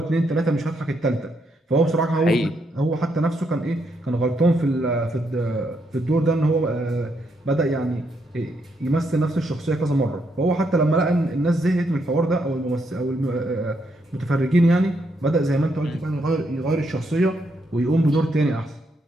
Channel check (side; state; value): both; normal; correlation 0.77